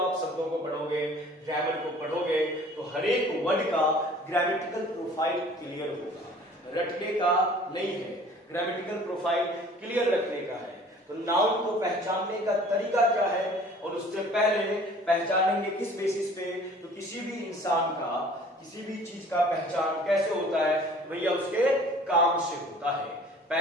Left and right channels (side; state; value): both; normal; correlation 0.50